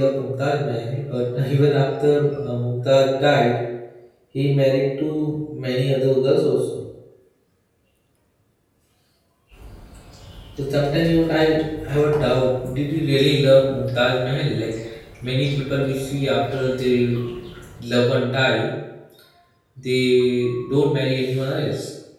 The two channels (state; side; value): identical; both; correlation 1.00